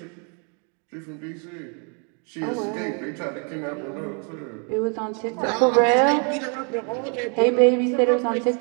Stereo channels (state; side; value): quieter; left; 38.2 dB